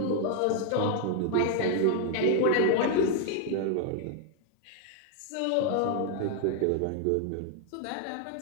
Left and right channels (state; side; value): different; both; correlation 0.00